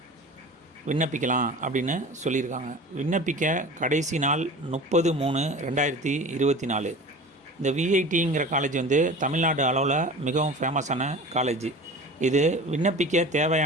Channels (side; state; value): both; normal; correlation 0.37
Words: விண்ணப்பிக்கலாம் அப்படின்னு சொல்லியிருக்காங்க. விண்ணப்பிக்க கடைசி நாள் 30/3/2024. இந்த விஐடிங்கிற காலேஜ் தமிழ்நாடு அளவில் மிகவும் ஃபேமஸான காலேஜ். இது விண்ணப்பிக்க